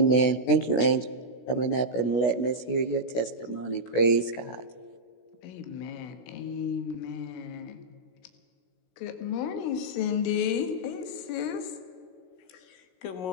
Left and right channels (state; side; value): late; right; 16 ms